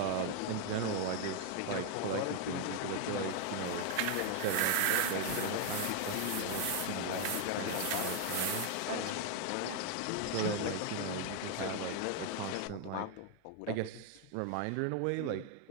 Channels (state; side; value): different; both; correlation 0.00